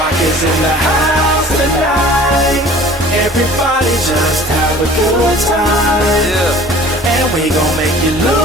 is in the house tonight. Everybody just have a good time. Yeah. And we gon' make you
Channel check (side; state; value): both; normal; correlation 0.47